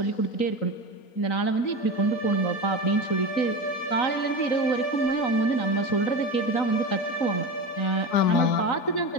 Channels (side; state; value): right; late; 3.9 ms